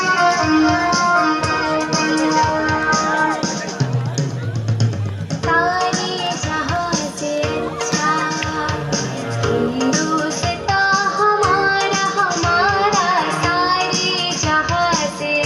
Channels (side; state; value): both; identical; correlation 1.00